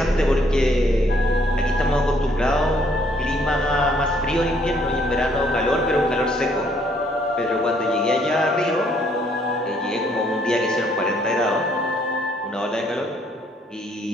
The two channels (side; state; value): both; normal; correlation 0.66